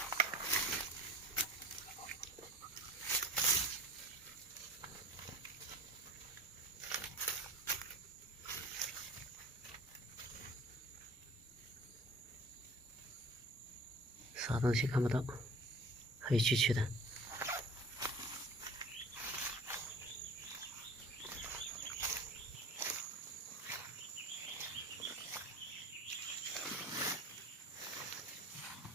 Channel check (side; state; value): both; normal; correlation 0.41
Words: 啥东西看不到，黑黢黢的。